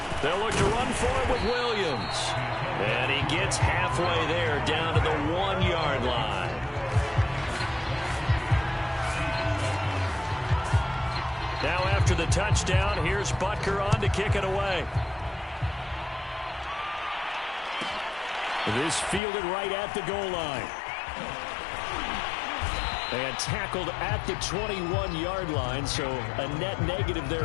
They'll look to run for it with Williams. And he gets halfway there down to the 1-yard line. Now after the touchdown, here's Butker on to kick it away. This fielded right at the goal line. And tackled at the 21-yard line, so a net negative there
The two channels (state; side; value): drops out; right; at 19.2 s